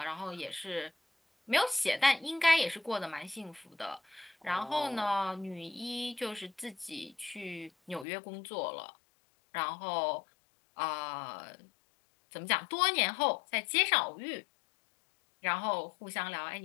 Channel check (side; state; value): right; drops out; at 8.1 s